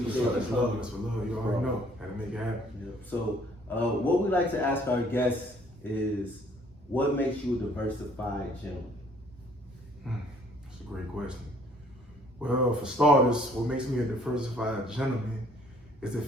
it. That's love. That's for love. You already know. Had to make it happen. Yeah. So, what we like to ask our guests is, what makes you a diversified gentleman? That's a great question. Well, for starters, what makes me a diversified gentleman is the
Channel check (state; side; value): normal; both; correlation 0.60